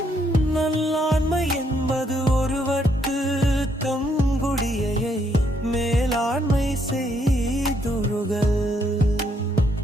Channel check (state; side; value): normal; both; correlation 0.73